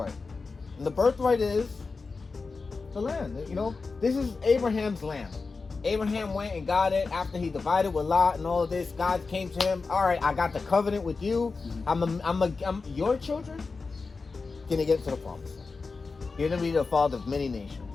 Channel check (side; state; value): right; quieter; 4.3 dB